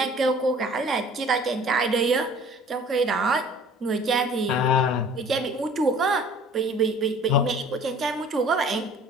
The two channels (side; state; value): both; normal; correlation 0.49